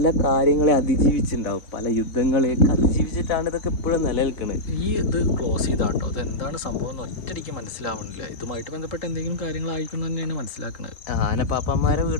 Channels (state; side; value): late; right; 3.7 ms